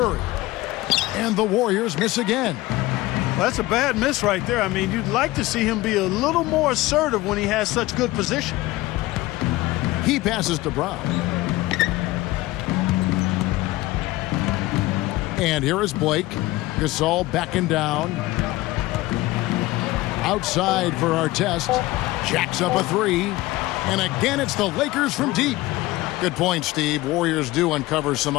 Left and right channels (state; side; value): quieter; right; 18.7 dB